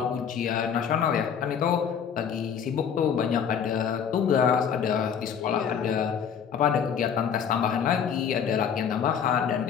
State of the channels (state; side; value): quieter; right; 7.6 dB